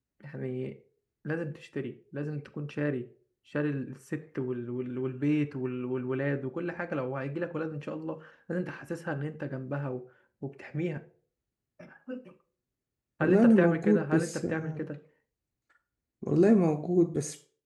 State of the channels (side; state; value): both; identical; correlation 1.00